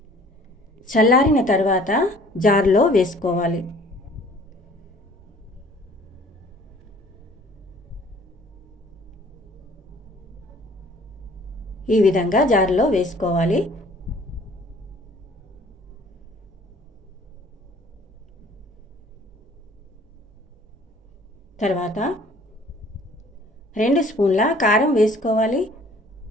చల్లారిన తర్వాత జార్లో వేసుకోవాలి. ఈ విధంగా జార్లో వేసుకోవాలి. తర్వాత 2 స్పూన్ల కారం వేసుకోవాలి.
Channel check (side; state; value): both; normal; correlation 0.53